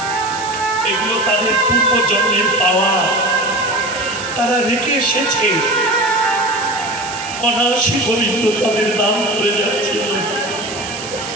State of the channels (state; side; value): noise; right; hiss, 11 dB below the sound